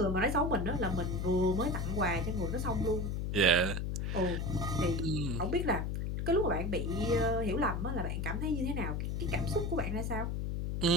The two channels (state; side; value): noise; left; hum, 1 dB below the sound